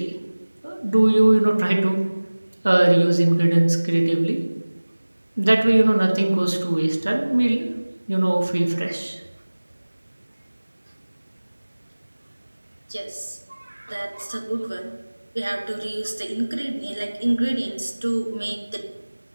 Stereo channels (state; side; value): inverted; both; correlation -1.00